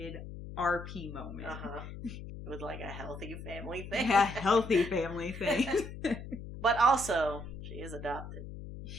RP moment. With, like, a healthy family thing. Yeah, healthy family thing. But also, she is adopted.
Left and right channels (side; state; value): left; noise; hum, 10 dB below the sound